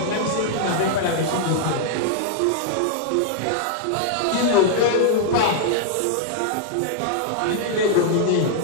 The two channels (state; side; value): different; both; correlation -0.01